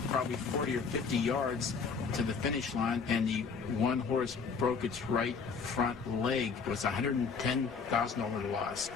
probably 40 or 50 yards to the finish line, and the one horse broke its right front leg. It was a $110,000 loss.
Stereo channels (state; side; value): quieter; right; 5.4 dB